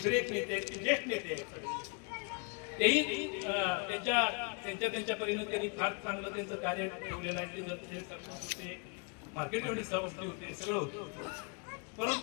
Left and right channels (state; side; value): quieter; right; 34.6 dB